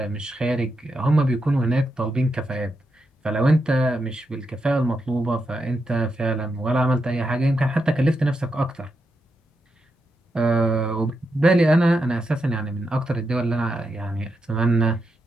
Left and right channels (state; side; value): normal; both; correlation 0.85